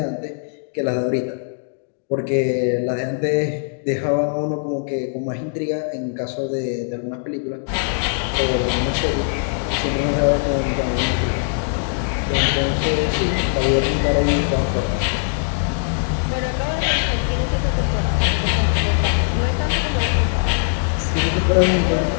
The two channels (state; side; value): silent; right; digital silence